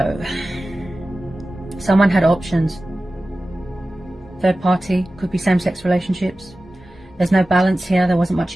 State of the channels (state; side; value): normal; both; correlation 0.95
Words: someone had options. Third party, could be same-sex relationships. There's no balance here, there wasn't